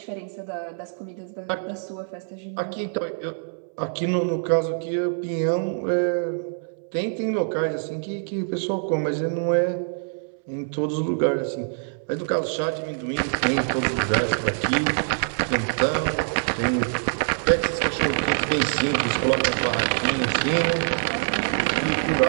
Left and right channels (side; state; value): left; silent; 62 dB below the other